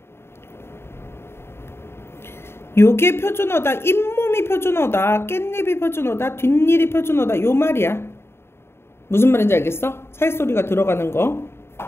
요게 표준어다, 잇몸이 표준어다, 깻잎이 표준어다, 뒷일이 표준어다 요 말이야. 무슨 말인지 알겠어? 사이소리가 들어가는 거.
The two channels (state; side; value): late; right; 0.12 ms